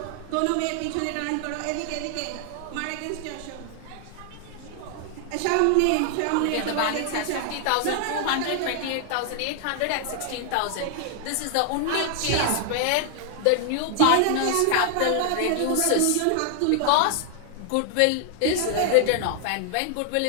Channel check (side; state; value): both; different; correlation 0.00